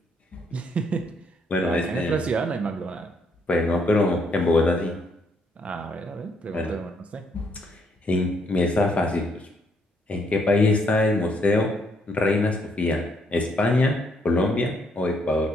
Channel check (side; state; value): both; normal; correlation 0.71